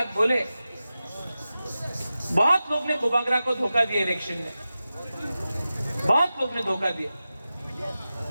बोले, बहुत लोग ने बुबागरा को धोखा दिया इलेक्शन में, बहुत लोग ने धोखा दिया,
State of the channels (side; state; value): both; inverted; correlation -0.93